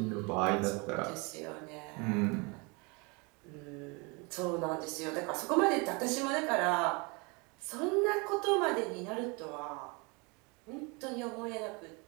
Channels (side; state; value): left; quieter; 29.6 dB